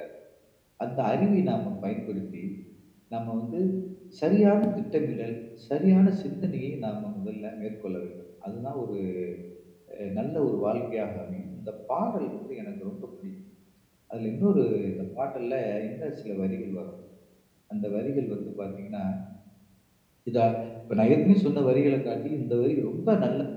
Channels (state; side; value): identical; both; correlation 1.00